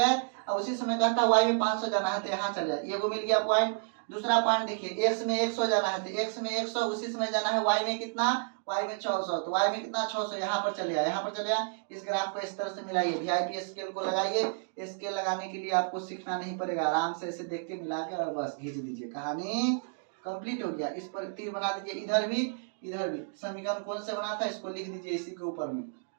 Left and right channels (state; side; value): silent; left; digital silence